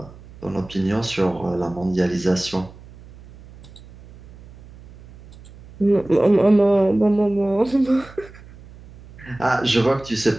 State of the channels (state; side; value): noise; right; hum, 21 dB below the sound